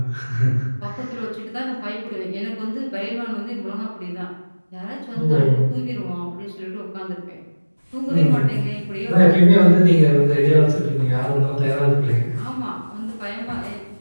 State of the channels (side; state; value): both; inverted; correlation -1.00